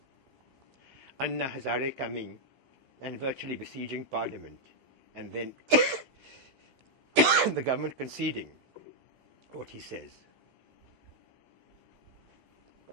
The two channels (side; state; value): left; late; 15 ms